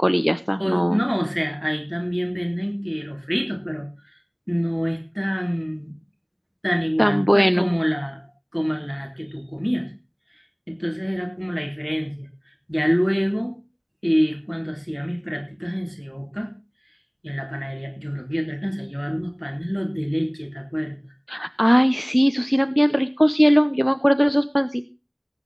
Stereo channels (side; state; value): both; identical; correlation 1.00